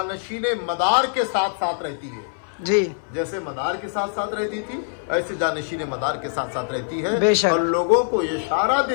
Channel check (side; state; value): right; silent; 63 dB below the other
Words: मदार के साथ साथ रहती है, जी, जैसे मदार के साथ साथ रहती थी, ऐसे जानशीने मदार के साथ साथ रहती है, बेशक। और लोगों को ये इशारा